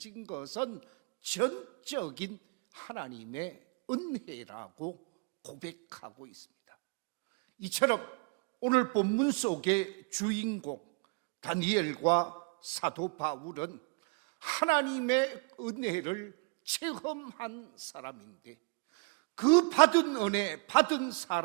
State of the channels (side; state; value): left; quieter; 33.0 dB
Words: 것은 전적인 하나님의 은혜라고 고백하고 있습니다. 이처럼 오늘 본문 속의 주인공 다니엘과 사도 바울은 하나님의 은혜를 체험한 사람인데 그 받은 은혜, 받은